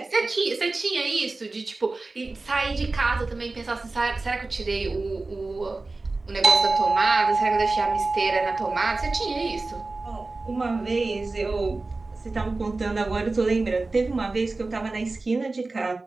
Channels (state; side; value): quieter; left; 3.4 dB